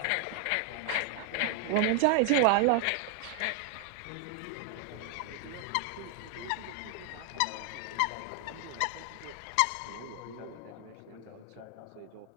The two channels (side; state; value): both; different; correlation 0.00